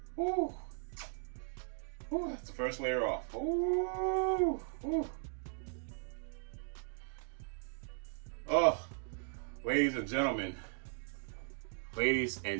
Whew. Whew. That's the first layer off. Ooh. Ooh. Oh, ladies and gentlemen. Ladies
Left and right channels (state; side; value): silent; left; 53 dB below the other